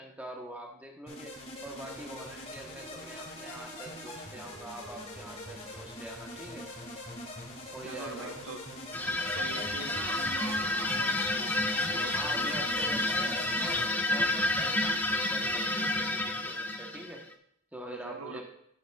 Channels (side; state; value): both; normal; correlation 0.38